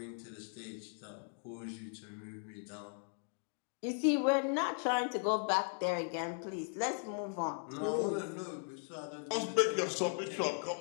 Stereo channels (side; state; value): right; silent; 53 dB below the other